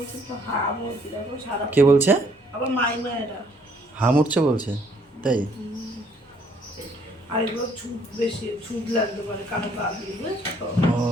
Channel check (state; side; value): normal; both; correlation 0.64